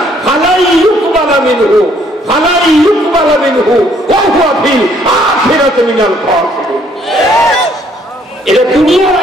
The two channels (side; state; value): both; normal; correlation 0.65